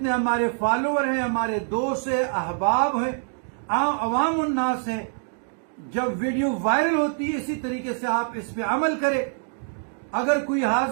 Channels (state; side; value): silent; left; 61 dB below the other